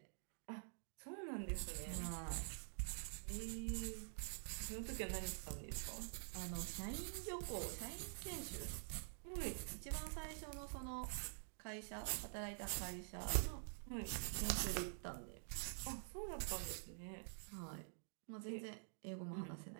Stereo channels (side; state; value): left; silent; digital silence